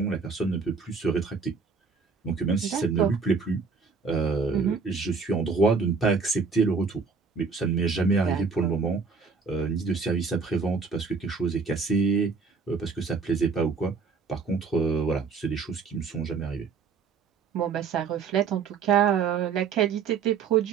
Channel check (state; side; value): quieter; left; 5.2 dB